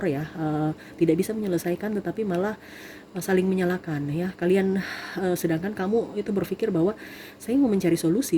ya, tidak bisa menyelesaikan, tetapi malah saling menyalahkan ya kalian. Sedangkan kamu itu berpikir bahwa saya mau mencari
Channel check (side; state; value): both; identical; correlation 1.00